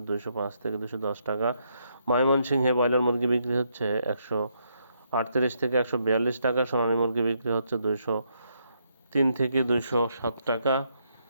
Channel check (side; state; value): both; inverted; correlation -0.76